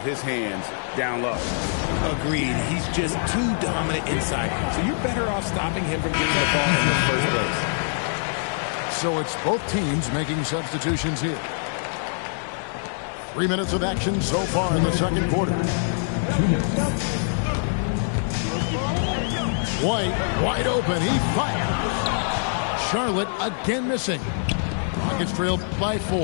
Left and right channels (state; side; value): silent; right; digital silence